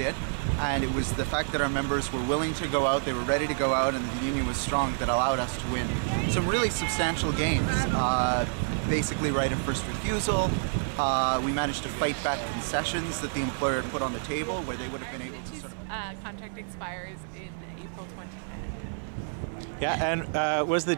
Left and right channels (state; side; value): silent; left; 58 dB below the other